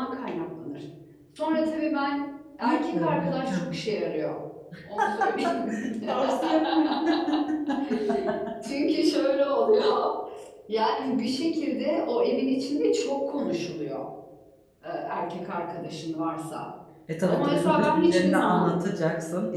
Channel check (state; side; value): identical; both; correlation 1.00